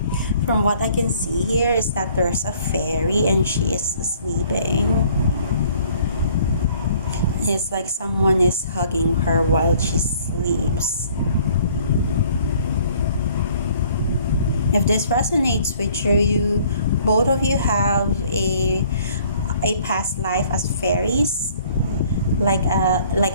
From what I can see here is that there's a fairy and she is sleeping. It's like someone is hugging her while she sleeps. If this resonates with you, both of you have a past life as fairies, like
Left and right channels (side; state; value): both; inverted; correlation -0.57